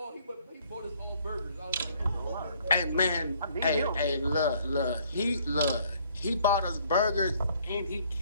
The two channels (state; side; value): inverted; both; correlation -0.62